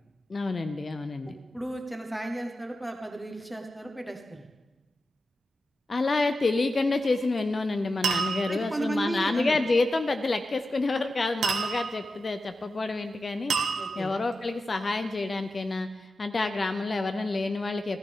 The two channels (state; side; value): normal; both; correlation 0.91